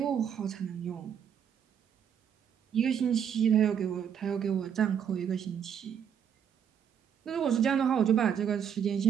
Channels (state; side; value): quieter; left; 8.2 dB